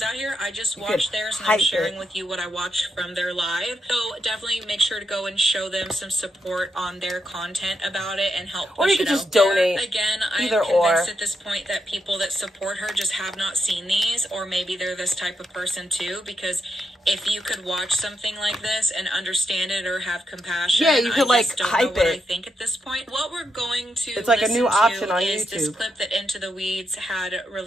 out here. I just watched theirs and I'm sharing with you what I watched from their live. So definitely make sure to go and show them some support on their content about it and help push it out. Or you could just donate. Again, I'm convinced at this point that people that support her just have not seen these, or maybe they're this type of person too, because if you could watch something like this and understand it or have compassion, yeah, you could like hype it. I think at this point, what we're going to it's like a new option on is YouTube. This clip that Into the Weeds had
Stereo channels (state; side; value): normal; both; correlation 0.82